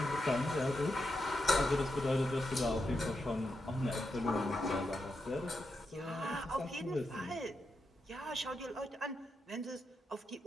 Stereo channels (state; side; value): normal; both; correlation 0.85